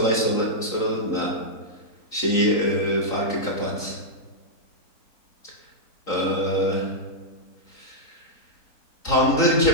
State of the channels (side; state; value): right; late; 3.9 ms